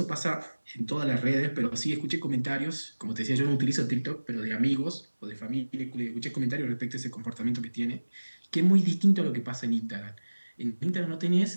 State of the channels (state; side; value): inverted; both; correlation -1.00